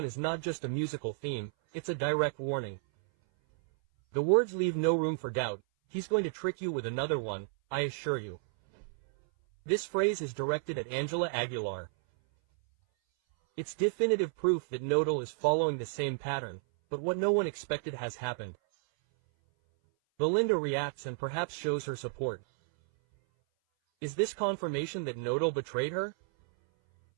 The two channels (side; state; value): left; silent; 56 dB below the other